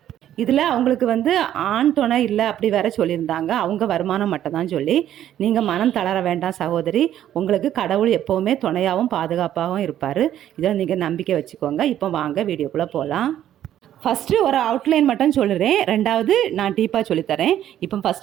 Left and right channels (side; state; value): left; quieter; 11.5 dB